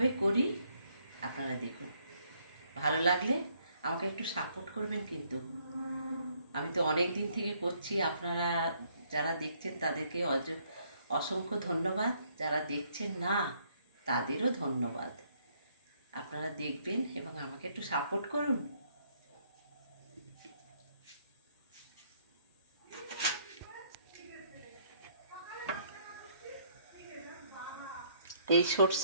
করি আপনারা দেখুন। ভালো লাগলে আমাকে একটু সাপোর্ট করবেন কিন্তু। আমি তো অনেক দিন থেকে করছি, আপনারা যারা দেখছেন তাদেরকে অসংখ্য ধন্যবাদ, যারা দেখছেন না তাদেরও ধন্যবাদ। আপনারা দেখবেন এবং আমাকে একটু সাপোর্ট করুন। এই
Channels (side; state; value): both; inverted; correlation -0.68